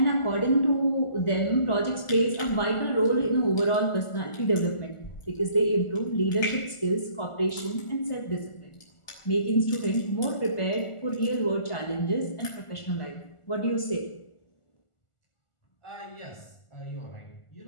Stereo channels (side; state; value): right; late; 1.4 ms